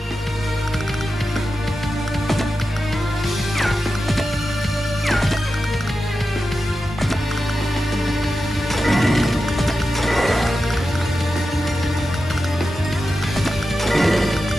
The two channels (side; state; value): both; normal; correlation 0.91